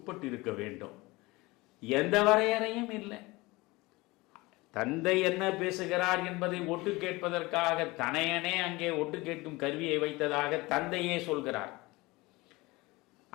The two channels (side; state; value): right; quieter; 22.2 dB